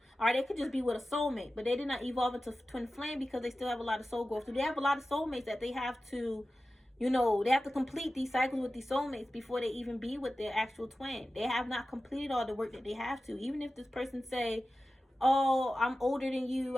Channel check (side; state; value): both; normal; correlation 0.95